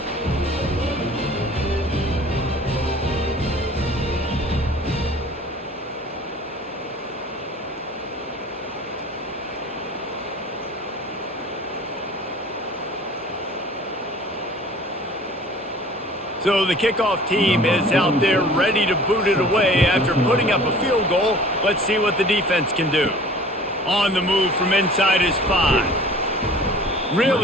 So the kickoff team is out there ready to boot it away after putting up a field goal. Let's see what the defense can do. On the move from inside is 5.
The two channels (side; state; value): both; normal; correlation 0.46